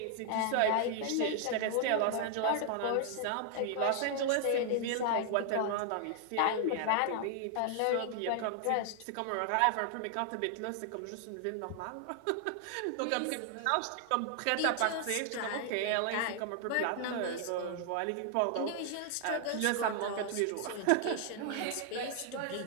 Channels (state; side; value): different; both; correlation 0.00